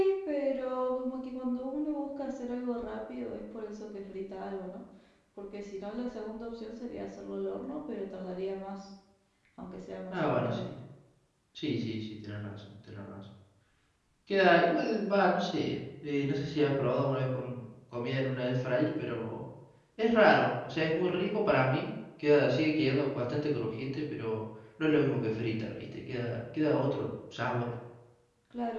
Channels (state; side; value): identical; both; correlation 1.00